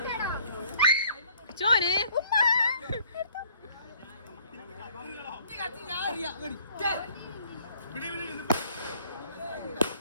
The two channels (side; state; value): both; inverted; correlation -0.60